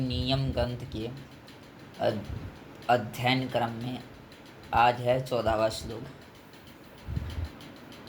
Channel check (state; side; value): identical; both; correlation 1.00